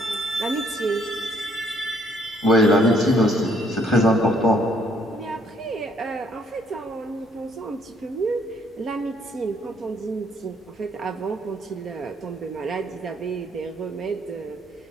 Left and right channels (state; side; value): normal; both; correlation 0.66